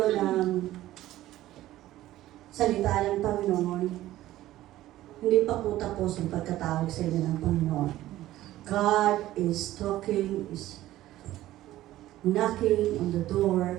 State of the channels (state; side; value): quieter; left; 14.9 dB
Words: ng salita ng Panginoon. Hindi pa po tapos ang pagkatawag sa inyo ng Panginoon. God is talking, is knocking on the